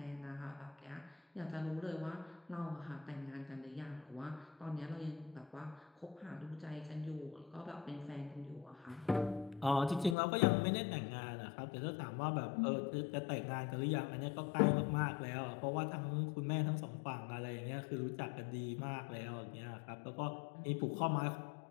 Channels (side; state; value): right; drops out; at 10.2 s